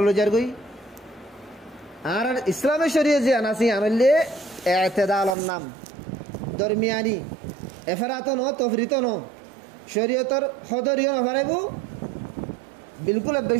গই আর ইসলামের শরীয়ত যে আনাসি আনলে এতেদালর নাম দরমিয়ানি এফারাত ন তফরিত ন শরীয়তর হদরিও নফারাইব বিলকুল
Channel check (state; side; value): drops out; left; at 5.4 s